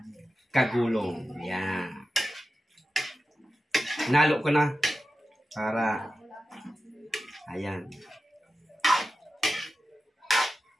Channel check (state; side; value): normal; both; correlation 0.93